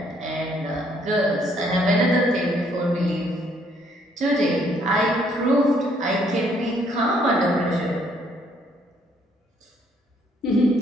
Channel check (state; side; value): normal; both; correlation 0.67